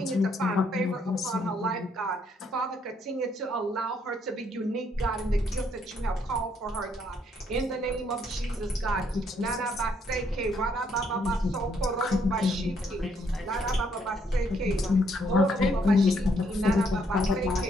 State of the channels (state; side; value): normal; both; correlation 0.71